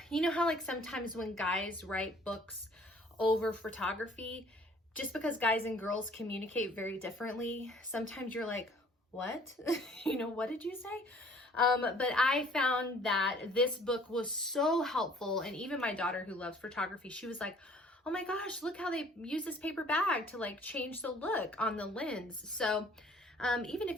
you know how like sometimes when guys write books over photography, just because guys and girls communicate very differently, sometimes you're like, what? You know, what did you say? But I found that this book was so helpful, and even my daughter who loves photography, she was like, oh my gosh, look how they use this paper bag to like change the look on the lens. So even if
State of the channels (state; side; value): normal; both; correlation 0.55